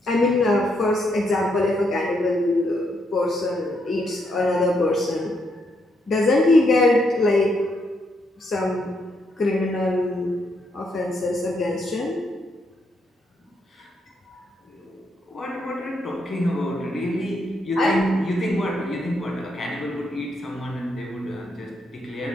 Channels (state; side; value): normal; both; correlation 0.77